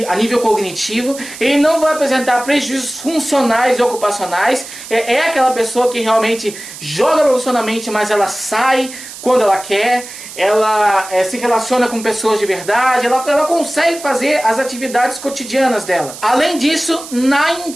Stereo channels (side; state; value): right; noise; hiss, 13 dB below the sound